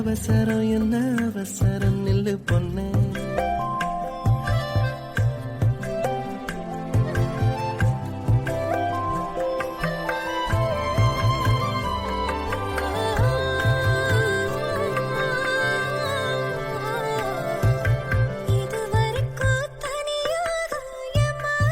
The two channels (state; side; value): identical; both; correlation 1.00